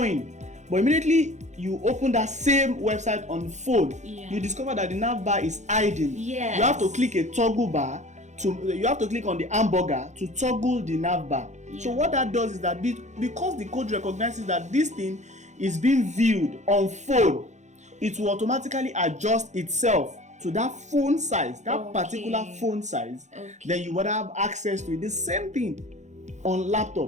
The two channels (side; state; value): left; late; 0.34 ms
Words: but immediately you open that same website on phone, you discover that the nav bar is hiding. Yes. You have to click a toggle bar you have to click on the hamburger to toggle the nav bar. So what that does is that because the code recognizes that this thing is being viewed on phone, it will automatically adjust itself to that phone size, that particular phone size. Then you would have access to it. The same thing on